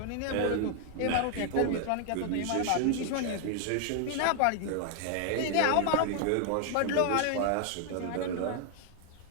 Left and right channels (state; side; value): different; both; correlation 0.00